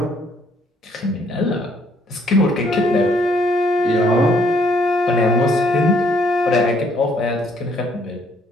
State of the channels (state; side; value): normal; both; correlation 0.66